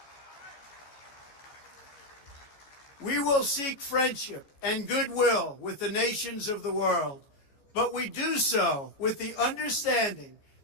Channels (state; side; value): late; right; 14 ms